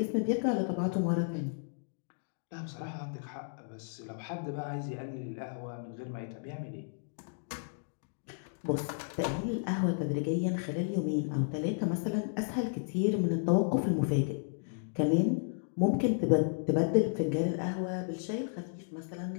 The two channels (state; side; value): silent; right; digital silence